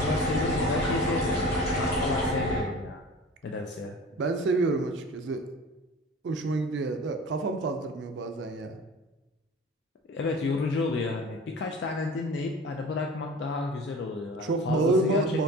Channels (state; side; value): normal; both; correlation 0.39